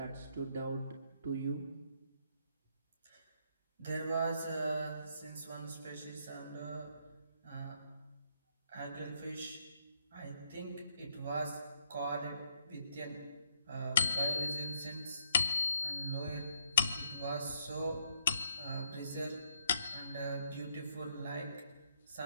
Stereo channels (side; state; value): both; inverted; correlation -0.72